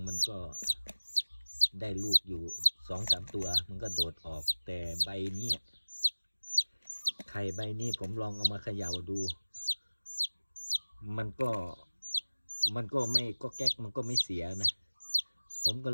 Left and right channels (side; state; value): both; inverted; correlation -1.00